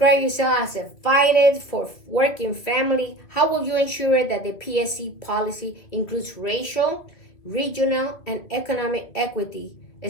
yourself as a fighter for working family. How will you ensure that the PSC policy includes racial, regional, and economic equity,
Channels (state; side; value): late; right; 2.6 ms